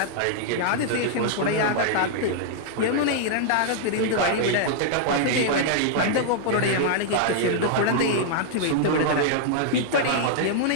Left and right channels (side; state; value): both; different; correlation -0.01